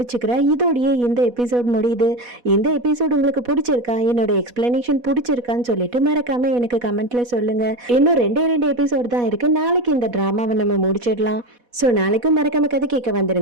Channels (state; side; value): late; left; 4.1 ms